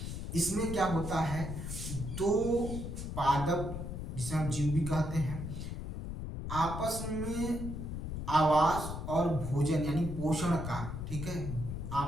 इसमें क्या होता है, दो पादप जिसे हम जीव भी कहते हैं, आपस में आवास और भोजन यानी पोषण का, ठीक है,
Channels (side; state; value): left; noise; rumble, 6 dB below the sound